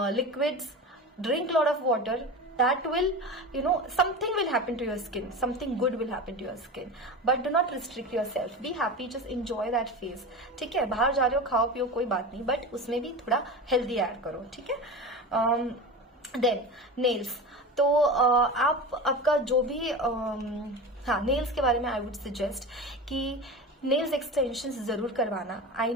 liquids, drink lot of water. That will, something will happen to your skin, something good will happen to your skin, but do not restrict yourself. Be happy, just enjoy that phase. ठीक है, बाहर जा रहे हो, खाओ पियो, कोई बात नहीं, बट उसमें भी थोड़ा हेल्दी ऐड करो. ठीक है. Then nails. तो आपका जो भी हाँ, नेल्स के बारे में आई वुड सजेस्ट कि नेल्स एक्सटेंशंस जरूर करवाना. I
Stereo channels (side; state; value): both; normal; correlation 0.28